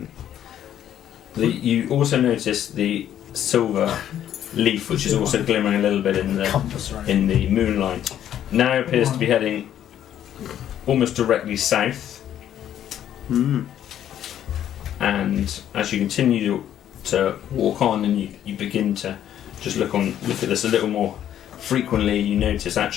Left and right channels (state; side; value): quieter; right; 10.7 dB